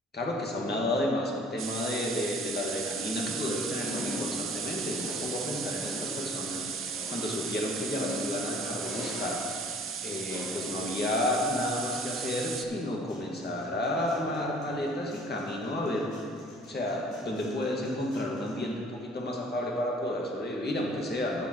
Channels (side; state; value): both; normal; correlation 0.53